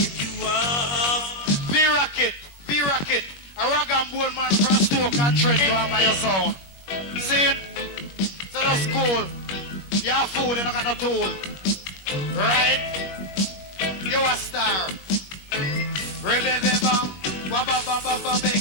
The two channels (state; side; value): late; right; 21 ms